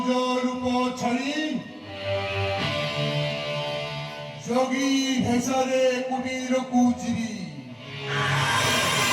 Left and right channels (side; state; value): both; identical; correlation 1.00